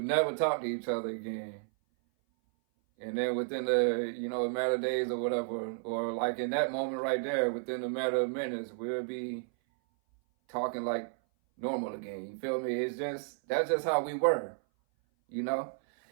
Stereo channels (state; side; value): silent; left; 56 dB below the other